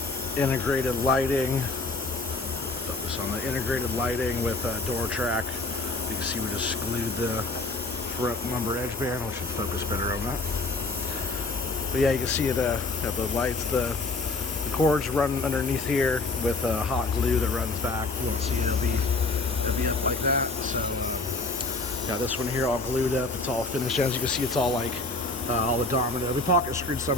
integrated lighting. Focus on the integrated lighting with door track. You can see we just glued the front lumber edge band. We should focus better on that. But yeah, you can see it. The lights, the cords run underneath here with hot glue that runs back. You won't see it. It'll be up like that. So yeah, this one here all glued up. It's all finished. As you can see, it's all like all the domino. We pocket screwed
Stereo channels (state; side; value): quieter; right; 3.4 dB